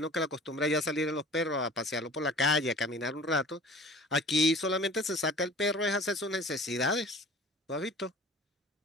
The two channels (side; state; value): both; normal; correlation 0.45